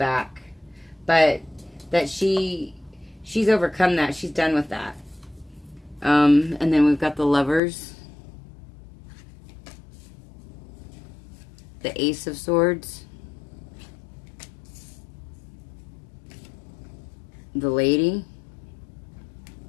but that she's overcome that. She's done with that. And then we've got the Lovers, the Ace of Swords, the Lady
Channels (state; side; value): drops out; right; at 7.6 s